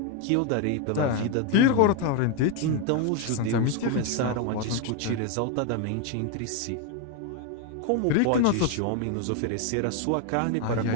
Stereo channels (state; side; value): different; both; correlation 0.01